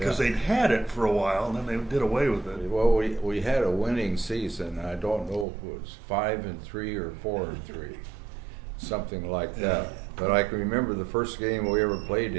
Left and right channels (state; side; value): drops out; left; at 5.5 s